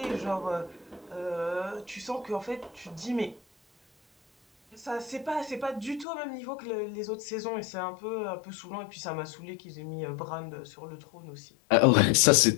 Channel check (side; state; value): right; drops out; at 6.1 s